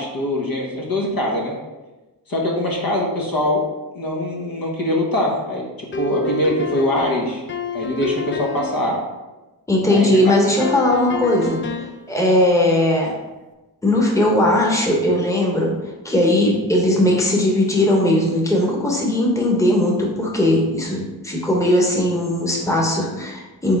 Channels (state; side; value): normal; both; correlation 0.36